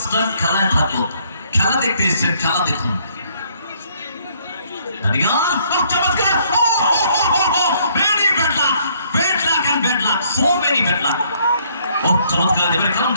খেলায় থাকলো খেলা দেখতে এসেছেন খেলা দেখুন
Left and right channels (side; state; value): both; inverted; correlation -0.65